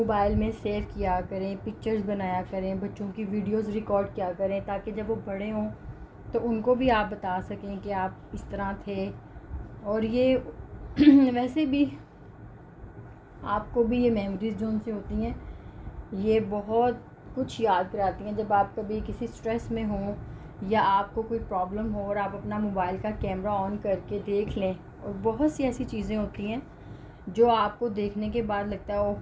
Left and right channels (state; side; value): identical; both; correlation 1.00